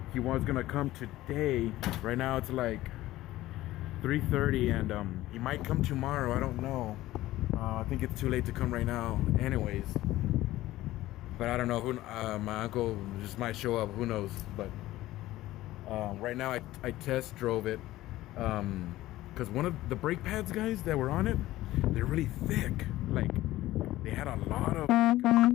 he was gonna come today. Right now it's like 3:30, and he might come tomorrow. I don't know. I think it's too late to come right now anyways, but I don't know who. My uncle just might show up, who knows. But right now I test drove it because one of the brake pads, guys, that were on it, they're really thick. Like they had a lot of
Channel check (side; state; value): right; quieter; 16.1 dB